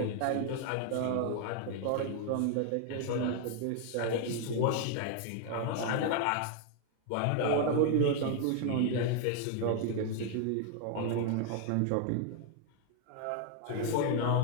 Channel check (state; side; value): different; both; correlation 0.00